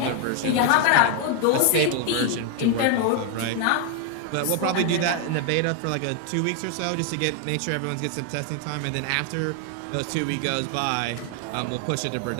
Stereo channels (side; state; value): both; different; correlation 0.01